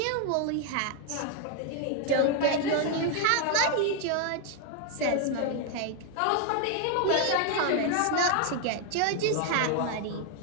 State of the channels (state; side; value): different; both; correlation 0.01